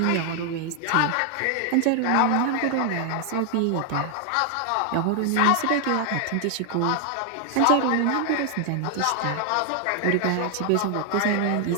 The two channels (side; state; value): both; different; correlation 0.00